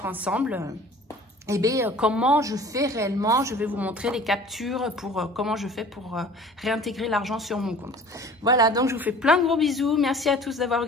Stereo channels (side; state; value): both; normal; correlation 0.46